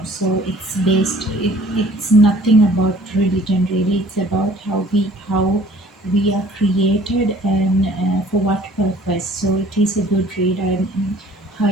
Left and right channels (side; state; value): both; normal; correlation 0.53